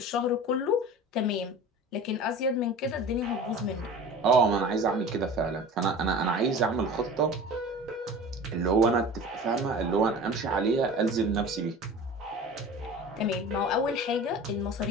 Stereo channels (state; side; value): normal; both; correlation 0.37